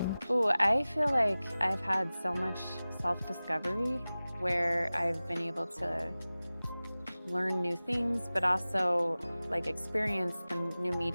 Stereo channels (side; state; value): both; inverted; correlation -0.98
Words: Ooh, I feel like I've had so much self-discovery where I've been able to learn new things, but also like experience the new